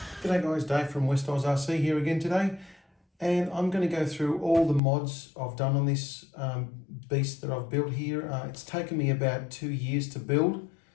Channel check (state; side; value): drops out; right; at 4.8 s